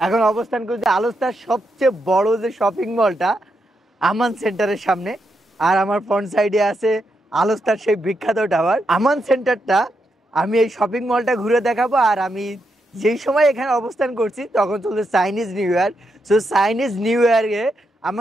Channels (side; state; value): both; normal; correlation 0.83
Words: এখন অবস্থান করছি আলোস্তার সবচেয়ে বড় যে শপিং মলটা আমান সেন্টারের সামনে। আর আমার ফ্রন্ট সাইডে আছে আলোস্তার সেই বিখ্যাত টাওয়ার আমান সেন্টারটা। আমি এই শপিং মলটা ঘুরে দেখাবো। আর আমি যেই সময় এখানে অবস্থান করছি তখন চলছে Chinese new year. So Chinese new ইয়ারে